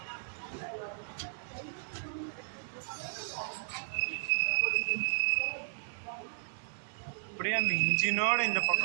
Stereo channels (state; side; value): silent; left; digital silence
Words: அப்படியே அந்த இன்ஜினோட இந்த